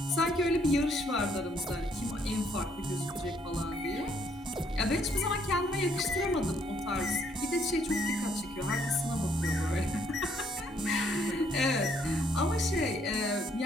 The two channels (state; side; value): normal; both; correlation 0.68